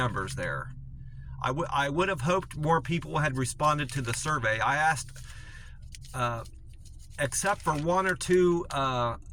there. I would have hoped more people had responded to the survey. I asked, except for 1 or 2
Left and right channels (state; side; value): identical; both; correlation 1.00